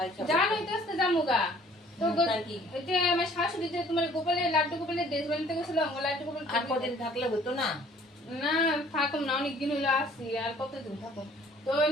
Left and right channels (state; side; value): normal; both; correlation 0.56